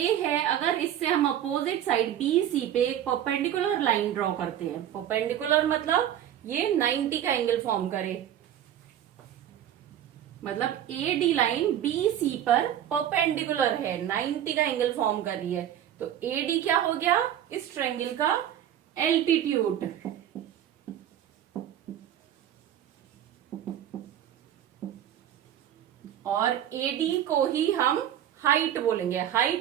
है, अगर इससे हम अपोजिट साइड BC पे एक परपेंडिकुलर लाइन ड्रॉ करते हैं, परपेंडिकुलर मतलब ये 90 का एंगल फॉर्म करे, मतलब AD लाइन BC पर परपेंडिकुलर है, 90 का एंगल फॉर्म कर रही है, तो AD क्या हो गया इस ट्रायंगल का एल्टीट्यूड। और AD को ही हम हाइट बोलेंगे,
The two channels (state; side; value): quieter; left; 10.8 dB